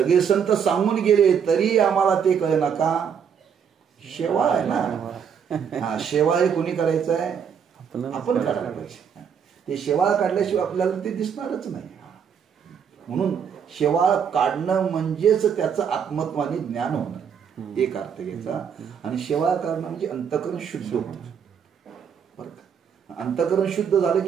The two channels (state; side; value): quieter; left; 7.4 dB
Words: संत सांगून गेले, तरी आम्हाला ते कळे ना का? शेवाळ आहे ना. शेवाळ हे कोणी करायचं आहे? आपण काढायला पाहिजे. ते शेवाळ काढल्याशिवाय आपल्याला ते दिसणारच नाही. म्हणून शेवाळ काढणं म्हणजेच त्याचं आत्मत्वाने ज्ञान होणं, एक अर्थ घ्यायचा. आणि शेवाळ काढणं म्हणजे अंतःकरण शुद्ध होतं, बरं का. अंतःकरण शुद्ध झालं